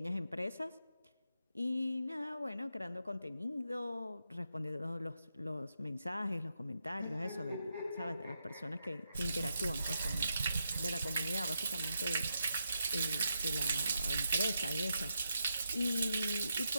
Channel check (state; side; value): inverted; both; correlation -0.83